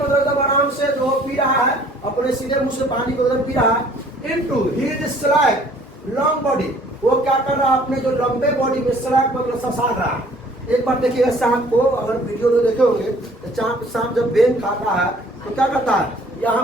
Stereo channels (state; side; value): normal; both; correlation 0.56